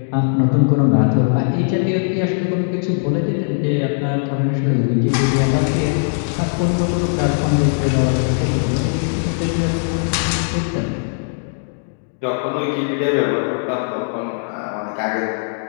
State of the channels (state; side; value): silent; right; digital silence